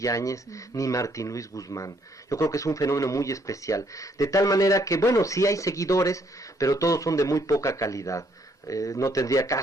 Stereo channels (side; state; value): both; normal; correlation 0.69